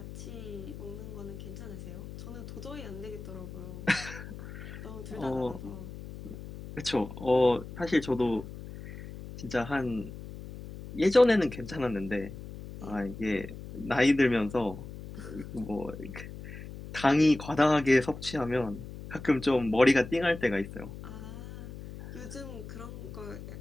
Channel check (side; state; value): left; noise; hum, 12 dB below the sound